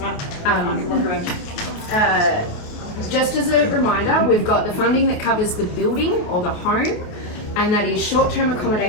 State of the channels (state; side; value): late; right; 28 ms